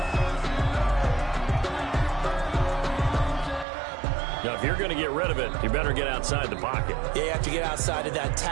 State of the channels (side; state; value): left; drops out; at 3.7 s